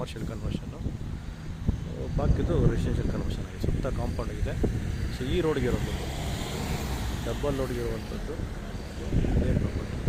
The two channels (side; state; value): both; identical; correlation 1.00